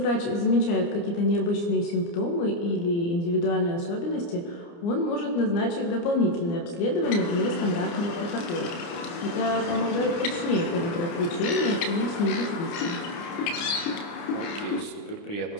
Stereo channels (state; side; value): late; right; 29 ms